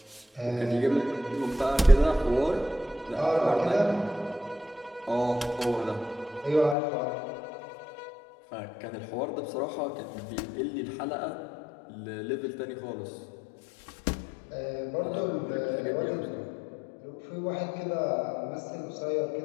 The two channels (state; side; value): drops out; right; at 6.8 s